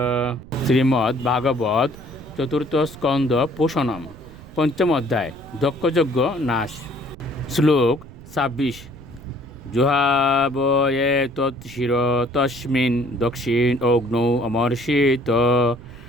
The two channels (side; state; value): right; noise; rumble, 18 dB below the sound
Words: শ্রীমদ্ ভাগবত চতুর্থ স্কন্ধ পোষণম পঞ্চম অধ্যায় দক্ষযজ্ঞ নাশ। শ্লোক ২৬। জুহাবয়ে তৎশির তস্মিন দক্ষিণ অগ্নৌ অমর্ষিত